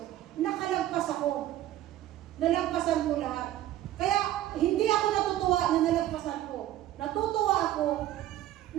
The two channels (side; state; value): left; quieter; 13.6 dB